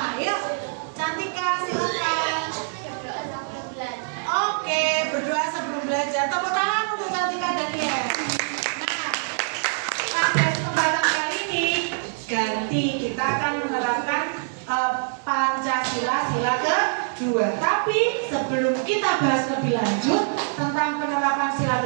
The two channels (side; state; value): left; silent; digital silence